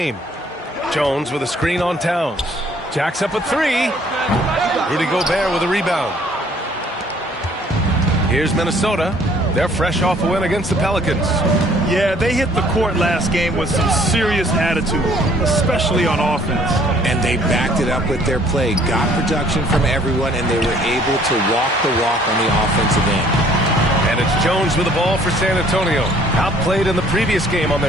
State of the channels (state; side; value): normal; both; correlation 0.59